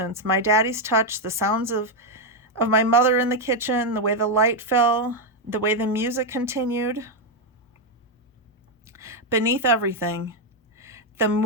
my daddy's touch, the sounds of my mother in the kitchen, the way the light fell, the way the music continued, beneath everything, the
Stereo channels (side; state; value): both; normal; correlation 0.03